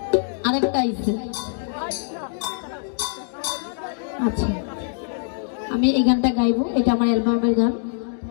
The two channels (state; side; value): silent; right; digital silence